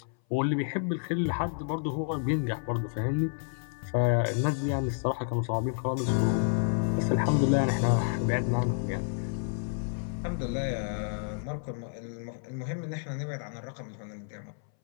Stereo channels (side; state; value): right; silent; 58 dB below the other